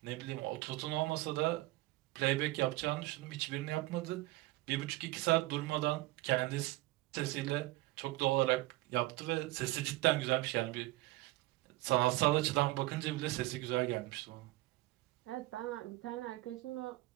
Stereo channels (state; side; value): quieter; left; 19.3 dB